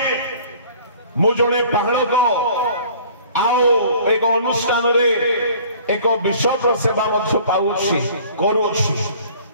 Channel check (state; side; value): inverted; both; correlation -0.50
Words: मु जणे पहाड़ को आओ एक अनुष्ठान रे एक विश्व सेवा मध्य पाउछि करूछि